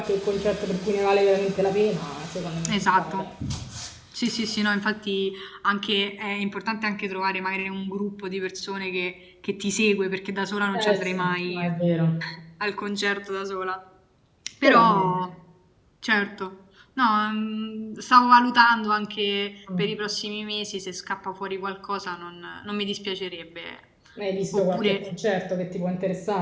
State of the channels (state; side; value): identical; both; correlation 1.00